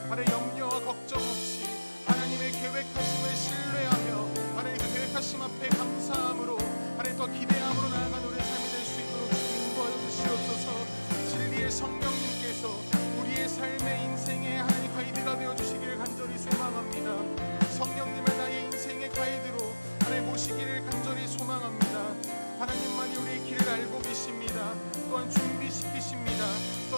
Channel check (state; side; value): inverted; both; correlation -1.00